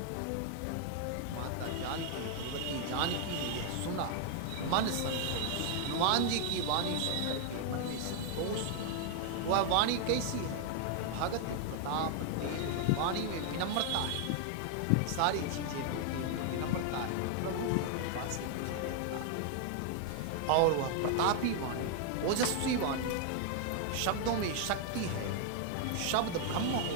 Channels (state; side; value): different; both; correlation 0.00